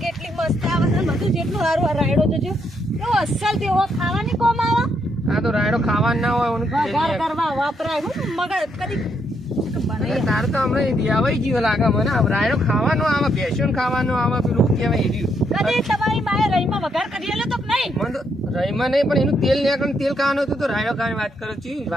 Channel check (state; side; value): normal; both; correlation 0.76